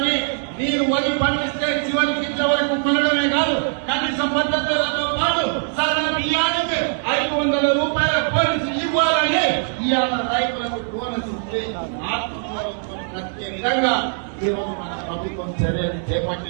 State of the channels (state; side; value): silent; left; 65 dB below the other